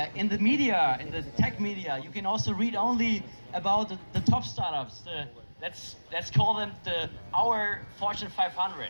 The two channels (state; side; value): inverted; both; correlation -1.00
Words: in the media, in the tech media, you can also read only about the top startups. Let's call them our Fortune